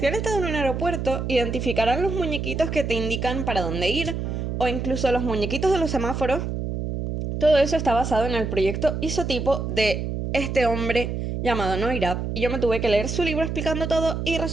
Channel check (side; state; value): right; noise; hum, 3 dB below the sound